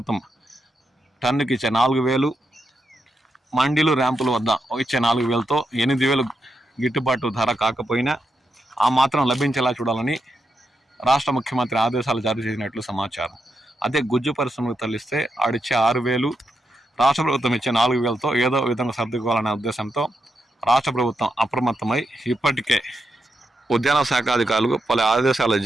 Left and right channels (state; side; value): normal; both; correlation 0.84